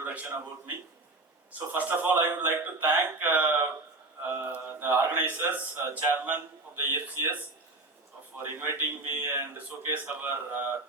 about me. So first of all, I would like to thank the organizers, chairman of the EFCS, for inviting me and showcase our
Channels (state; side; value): quieter; left; 3.1 dB